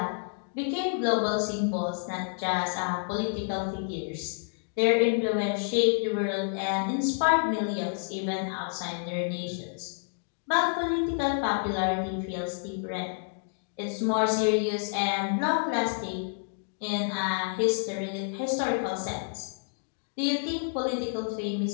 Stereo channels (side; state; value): right; silent; digital silence